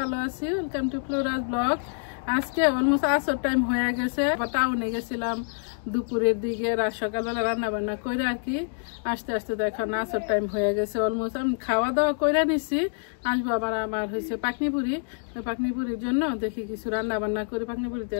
আছি। Welcome to Flora's blog. আজকে অলমোস্ট আসর টাইম হয়ে গেছে। টাউনে গেছিলাম দুপুরের দিকে, রাত সকালবেলা রান্না বান্না করে আর কি আস্তে আস্তে তো এখন আসর টাইম হয়ে গেছে। অলমোস্ট আমি খাওয়া দাওয়া করে নিছি। আসবো আবার আমার হয়েছে পাকনিপুরি। পাকনিপুরির জন্য দেখি কিছু রান্না বান্না করে পাকনিপুরিতে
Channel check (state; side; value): silent; right; digital silence